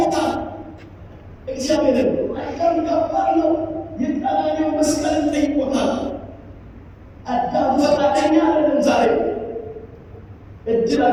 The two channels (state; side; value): identical; both; correlation 1.00